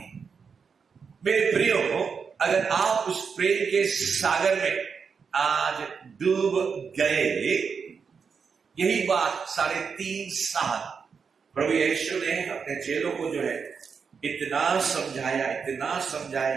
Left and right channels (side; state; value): left; quieter; 5.9 dB